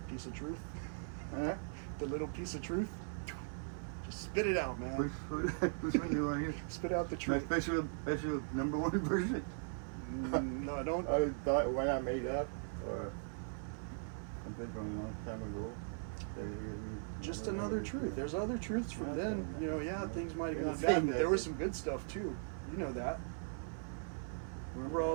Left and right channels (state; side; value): silent; left; 52 dB below the other